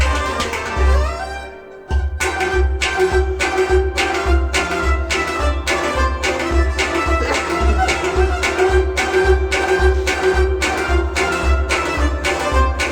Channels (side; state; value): both; identical; correlation 1.00